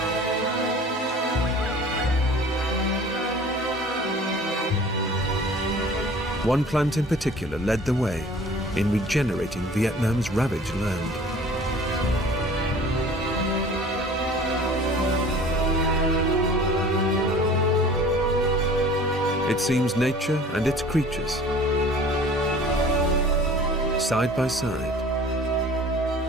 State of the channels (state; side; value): normal; both; correlation 0.46